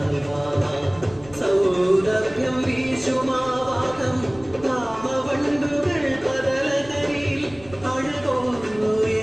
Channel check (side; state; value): left; noise; rumble, 22 dB below the sound